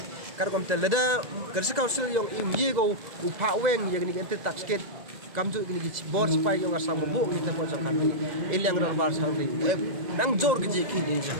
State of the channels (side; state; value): left; late; 2.0 ms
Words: kar kom tel da district council yang I go u pha weng ya gni anti taxket kamju gni gi board spy yang Assam bo gi ta po chong khanli ilang dorbar sangli nang jor gi khi ni